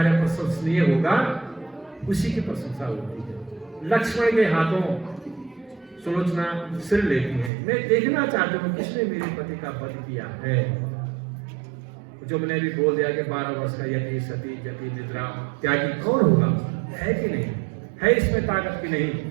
प्रशंसनीय होगा उसी की प्रशंसा होती है। लक्ष्मण के हाथों सुलोचना सिर लेती है, मैं देखना चाहती हूँ किसने मेरे पति का वध किया है। जो मैंने भी बोल दिया कि 12 वर्ष का यति सती जति निद्रा त्यागी कौन होगा, है कि नहीं है, इसमें ताकत की नहीं।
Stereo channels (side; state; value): left; drops out; at 7.5 s